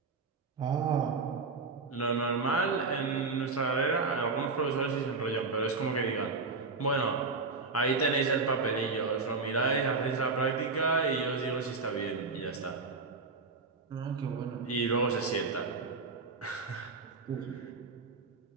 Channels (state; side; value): quieter; left; 4.1 dB